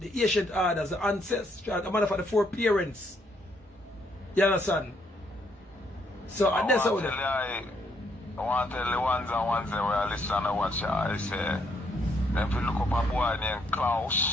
ancient orders, the ancestral, the matter for the foreparents. You understand? So I that's how want to tell the ones and ones that were listening to watch I say, if you look up a boy named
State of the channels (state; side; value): normal; both; correlation 0.72